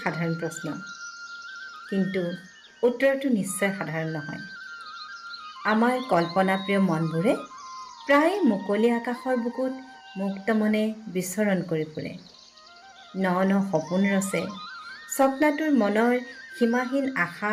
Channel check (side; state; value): both; identical; correlation 1.00